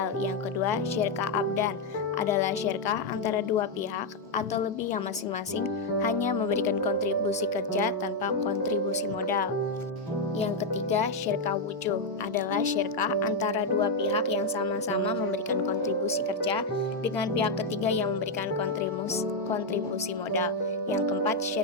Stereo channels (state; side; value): quieter; right; 3.0 dB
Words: Yang kedua, syirkah abdan adalah syirkah antara dua pihak atau lebih yang masing-masing hanya memberikan kontribusi kerja tanpa kontribusi modal. Yang ketiga, syirkah wujuh adalah syirkah antara dua pihak yang sama-sama memberikan kontribusi kerja dengan pihak ketiga yang memberikan kontribusi modal. Yang keempat,